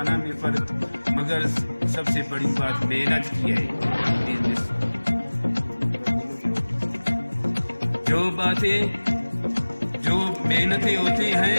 میں فرق, مگر سب سے بڑی بات محنت کی ہے. جو باتیں, جو محنتیں ہوتی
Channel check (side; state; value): both; inverted; correlation -1.00